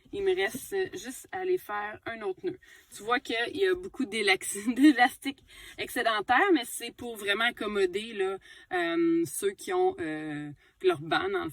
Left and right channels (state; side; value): identical; both; correlation 1.00